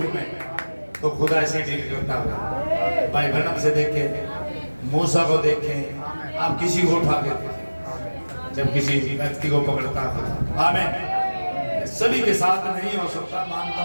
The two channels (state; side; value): inverted; both; correlation -1.00